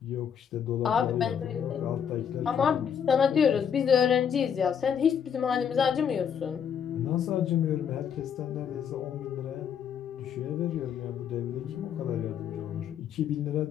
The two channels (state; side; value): quieter; right; 7.9 dB